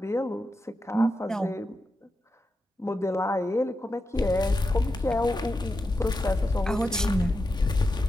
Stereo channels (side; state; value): both; normal; correlation 0.88